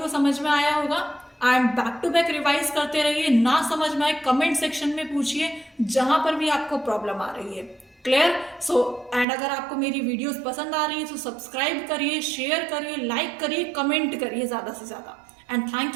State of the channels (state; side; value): drops out; left; at 9.2 s